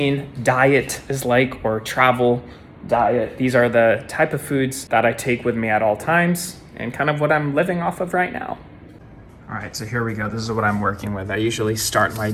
diet is like, or travel diet. These are the type of foods that I take with me at all times and kind of what I'm living off of right now. All right, so here we go. This is what I'm working with. I usually start my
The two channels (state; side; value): identical; both; correlation 1.00